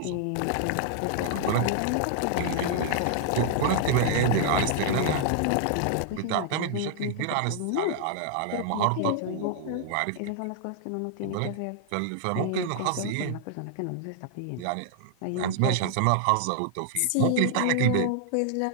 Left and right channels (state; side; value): different; both; correlation -0.01